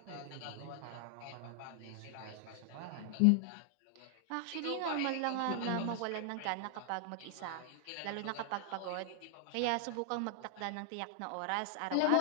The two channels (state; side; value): different; both; correlation 0.00